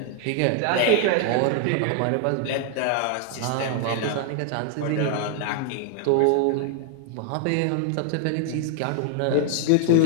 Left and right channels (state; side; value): different; both; correlation 0.00